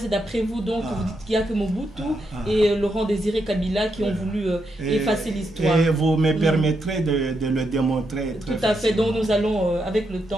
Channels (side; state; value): both; normal; correlation 0.82